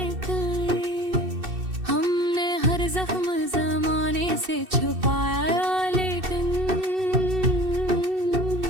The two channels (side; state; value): left; late; 2.6 ms